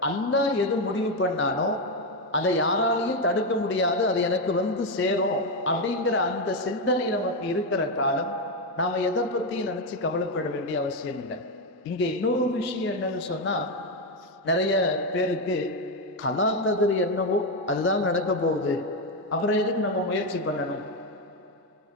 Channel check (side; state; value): both; normal; correlation 0.07